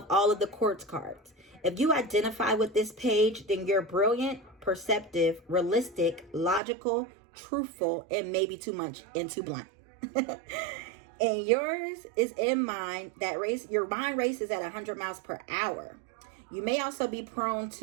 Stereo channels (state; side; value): drops out; left; at 6.6 s